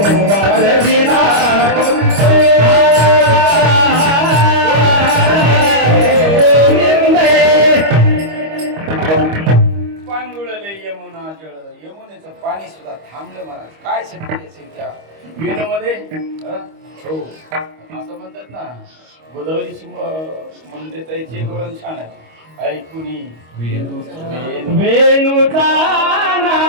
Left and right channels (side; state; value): left; late; 25 ms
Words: वाजविला गोविंदे, पांगुळले यमुना जळ. यमुनेचं पाणी सुद्धा थांबलं महाराज. काय शक्ती असेल त्या विणूमध्ये? हो असं म्हणतात ना, गोदावरीची मंदिराची एक वळण छान आहे. ऐकुनी वेणुचा